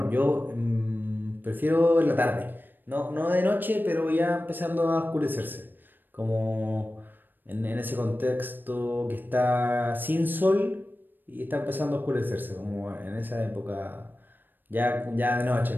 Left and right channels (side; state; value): left; late; 0.092 ms